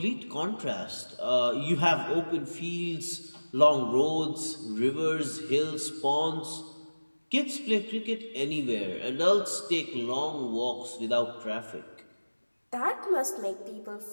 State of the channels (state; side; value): inverted; both; correlation -1.00